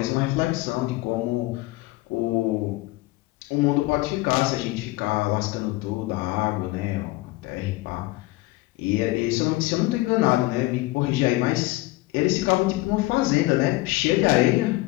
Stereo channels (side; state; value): right; quieter; 20.0 dB